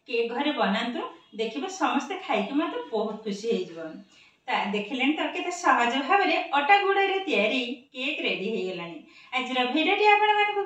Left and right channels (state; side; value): identical; both; correlation 1.00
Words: केक घरे बनांतु। देखिबे समस्त खाइके मत बहुत खुशी हे जबन। ता देखिलेन तो केते सहज भाव रे अटा गुड़ा रे तयारी केक रेडी हे गलानी। आज भिडियोटी आपण मानकु